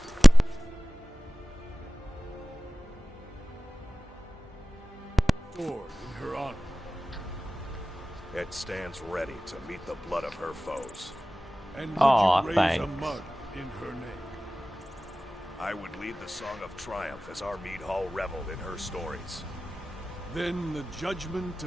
sword in her honor? It stands ready to meet the blood of her foes. And would Aw, you raise thanks. a mug in her name? I would lead the Song of Triumph as our mead hall reveled in her stories. Then the judgment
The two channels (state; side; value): normal; both; correlation 0.97